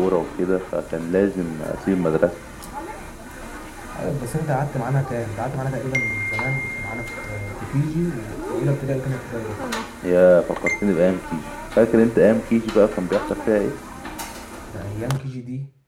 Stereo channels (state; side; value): identical; both; correlation 1.00